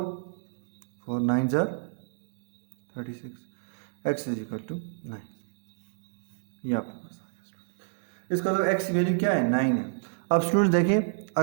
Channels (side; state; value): left; silent; digital silence